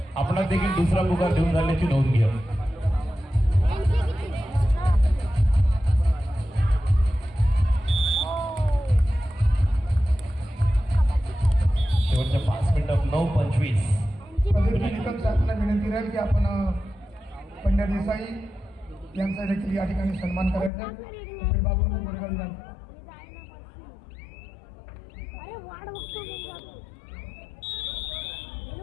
आपला देखील दुसरा पुकार देऊन झाल्याची नोंद घ्या. शेवटच्या 5 मिनिटात 9:25. निकम साहेबांना विनंती राहील की आपण पंड्या देसाई यांचा देखील या ठिकाणी सन्मान करायचा. बाबू गोरेगाव विधानसभा. अरे वाढ बघतो मग जातो.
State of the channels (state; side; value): drops out; right; at 20.7 s